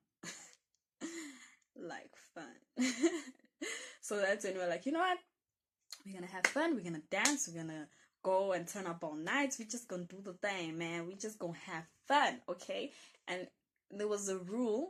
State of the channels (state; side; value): identical; both; correlation 1.00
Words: Like fun. So that's when we're like, you know what? We're gonna have fun, we're gonna dance, we're gonna go and turn up all nights, we're just gonna do the thing, man. We just gonna have fun, okay? And there was a